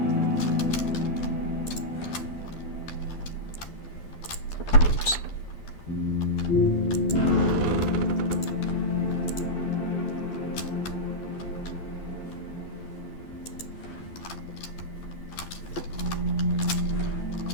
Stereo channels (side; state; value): right; late; 12 ms